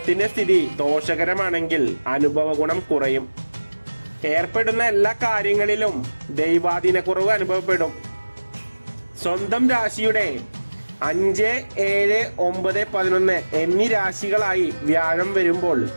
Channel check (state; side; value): inverted; both; correlation -1.00